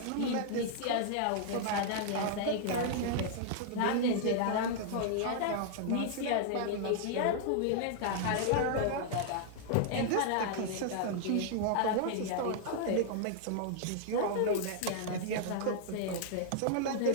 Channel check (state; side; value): different; both; correlation -0.01